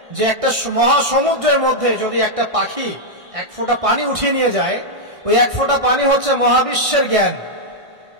যে একটা মহাসমুদ্রের মধ্যে যদি একটা পাখি 1 ফোঁটা পানি উঠিয়ে নিয়ে যায়, ওই 1 ফোঁটা পানি হচ্ছে মহাবিশ্বের জ্ঞান,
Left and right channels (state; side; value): late; left; 1.6 ms